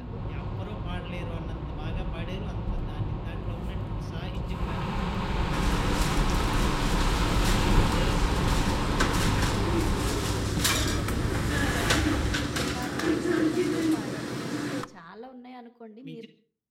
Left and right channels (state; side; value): identical; both; correlation 1.00